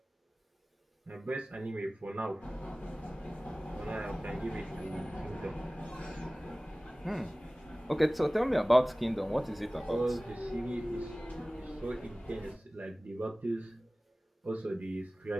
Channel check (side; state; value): both; normal; correlation 0.98